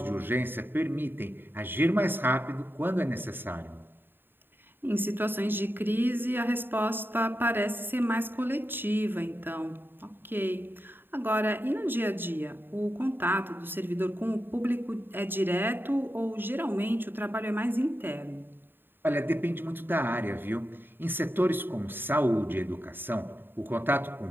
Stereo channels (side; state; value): left; late; 0.097 ms